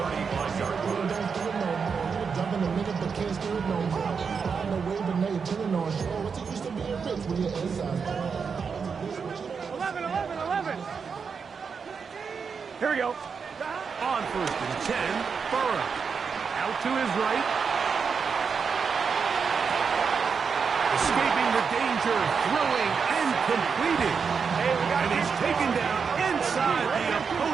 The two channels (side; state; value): left; quieter; 5.8 dB